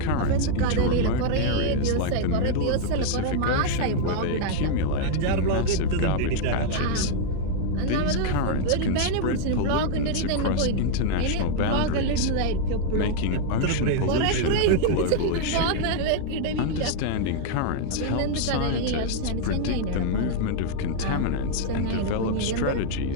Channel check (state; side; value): different; both; correlation 0.00